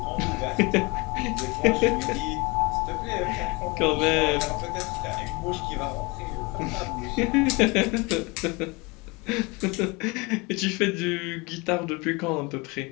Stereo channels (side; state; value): right; quieter; 26.7 dB